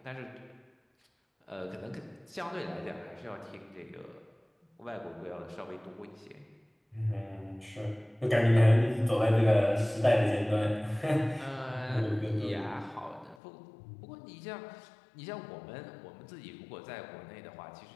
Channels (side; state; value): right; drops out; at 13.4 s